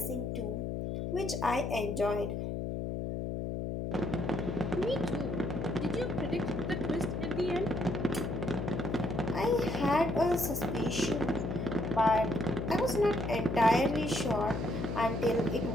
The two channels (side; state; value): left; noise; hum, 3 dB below the sound